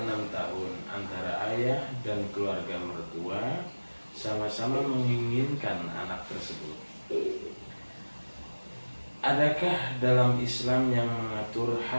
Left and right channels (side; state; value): both; inverted; correlation -1.00